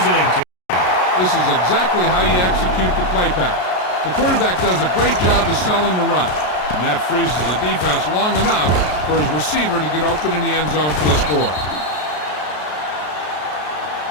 team. This is exactly how you execute the play pass. The quarterback does a great job of selling the run, and that freezes the defense long enough for his receiver to get open in the end zone for the score.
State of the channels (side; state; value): right; late; 33 ms